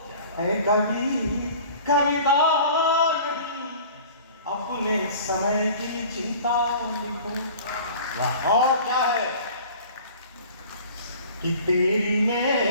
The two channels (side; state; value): both; inverted; correlation -0.45